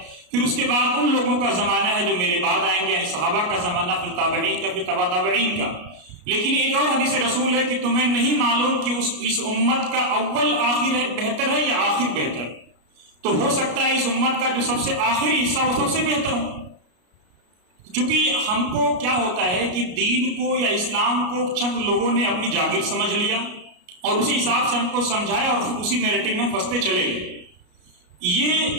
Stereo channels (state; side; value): late; left; 33 ms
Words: फिर उसके बाद उन लोगों का जमाना है जो मेरे बाद आएंगे, यानी सहाबा का जमाना, फिर ताबईन का, फिर तबा ताबईन का। लेकिन एक और हदीस रसूल है कि तुम्हें नहीं मालूम कि इस उम्मत का अव्वल आखिर है बेहतर है या आखिर बेहतर। तो हो सकता है इस उम्मत का जो सबसे आखिरी हिस्सा वो सबसे बेहतर हो। क्योंकि हमको क्या होता है कि दीन को या इस्लाम को चंद लोगों ने अपनी जागीर समझ लिया और उसी हिसाब से हमको समझाया और फिर उसी नैरेटिव में फंसते चले गए। ये